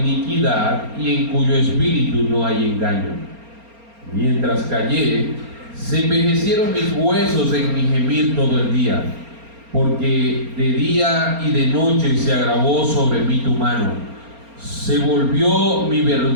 y en cuyo espíritu no hay engaño. Mientras callé, se envejecieron mis huesos en mi gemir todo el día, porque de día y de noche se agravó sobre mí tu mano. Se volvió mi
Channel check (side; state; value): left; late; 4.3 ms